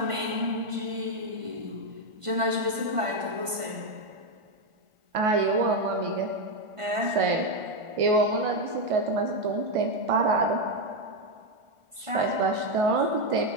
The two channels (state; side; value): late; left; 1.5 ms